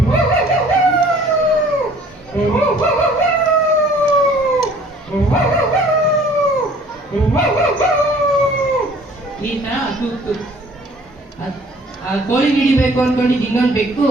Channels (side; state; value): both; normal; correlation 0.53